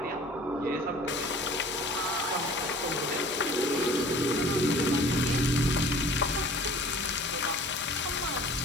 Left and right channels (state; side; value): normal; both; correlation 0.47